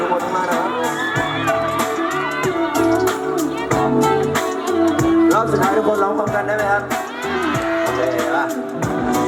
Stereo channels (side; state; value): both; identical; correlation 1.00